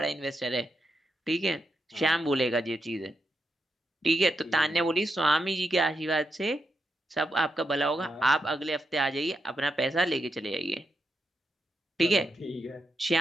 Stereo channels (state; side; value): normal; both; correlation 0.84